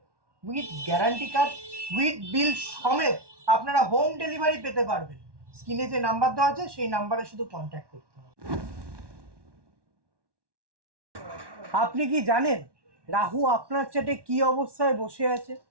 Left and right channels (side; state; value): left; late; 1.1 ms